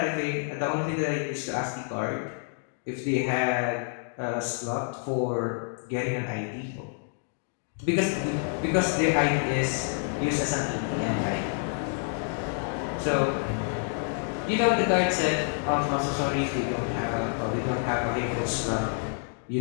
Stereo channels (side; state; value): right; silent; 56 dB below the other